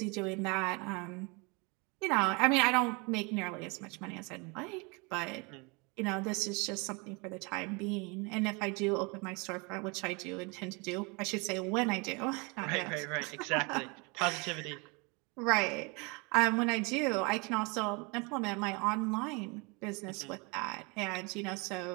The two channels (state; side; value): quieter; left; 29.6 dB